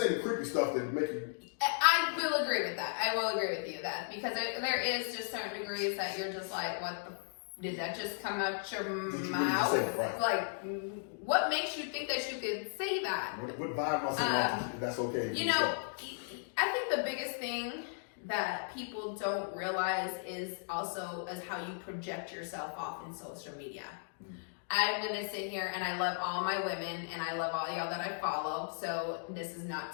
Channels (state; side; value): silent; right; digital silence